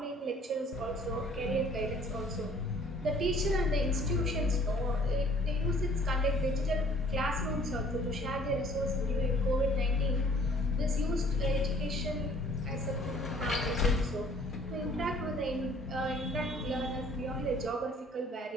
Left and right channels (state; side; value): normal; both; correlation 0.55